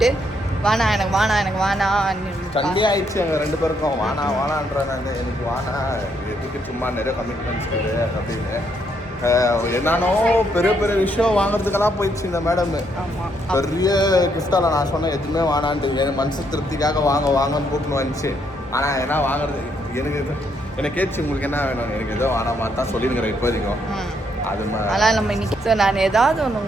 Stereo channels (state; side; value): normal; both; correlation 0.74